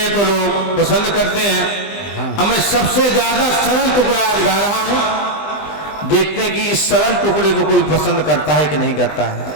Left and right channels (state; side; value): late; right; 20 ms